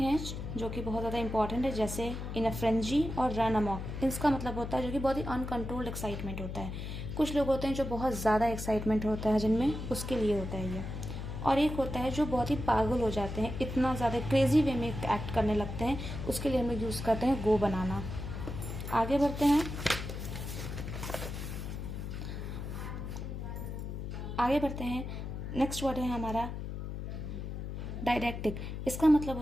हैं जो कि बहुत ज़्यादा इंपॉर्टेंट है, जैसे इन अ फ्रेंजी और रन अमॉक। इसका मतलब होता है जो कि बहुत ही अनकंट्रोल्ड एक्साइटमेंट होता है। कुछ लोग होते हैं जो बहुत ज़्यादा एक्साइटमेंट होता है जिनमें, उसके लिए होता है ये। और एक होता है जो बहुत ही पागल हो जाते हैं, इतना ज़्यादा क्रेजी वे में एक्ट करने लगते हैं, उसके लिए हम लोग यूज़ करते हैं गो बनाना। आगे बढ़ते हैं। नेक्स्ट वर्ड है हमारा डायडैक्टिक। इसका मतलब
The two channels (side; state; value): left; noise; hum, 6 dB below the sound